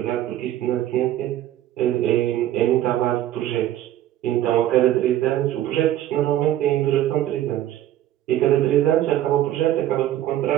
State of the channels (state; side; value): quieter; left; 12.8 dB